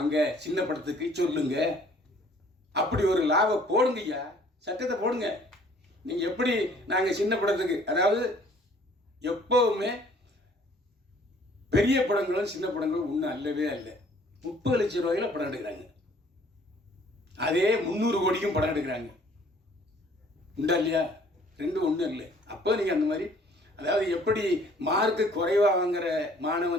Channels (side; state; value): both; normal; correlation 0.57